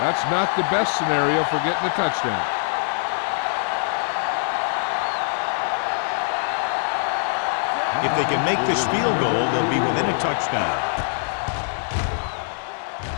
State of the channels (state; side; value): silent; right; digital silence